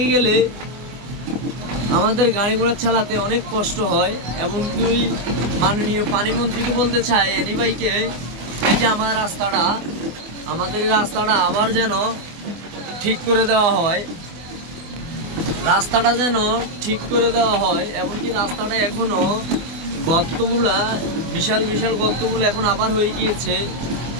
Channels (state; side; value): late; left; 24 ms